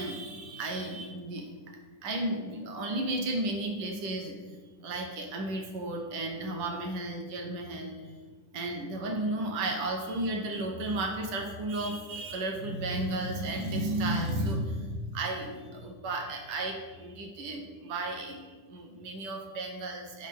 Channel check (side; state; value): left; late; 10 ms